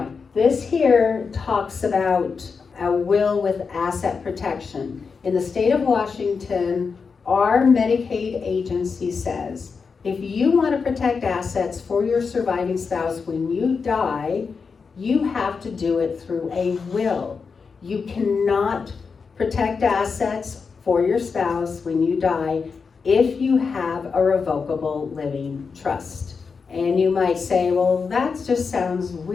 this here talks about a will with asset protection. In the state of Washington, our Medicaid agency says, if you want to protect assets for your surviving spouse when you die, you have to do it through a will. You cannot protect assets for your spouse when you die if you have a revocable living trust. And you might say, well, that just sounds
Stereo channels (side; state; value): right; quieter; 5.3 dB